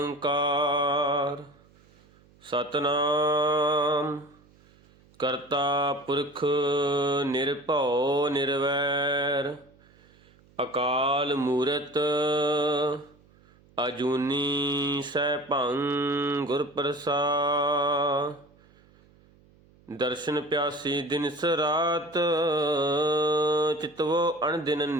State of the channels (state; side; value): noise; right; hum, 29 dB below the sound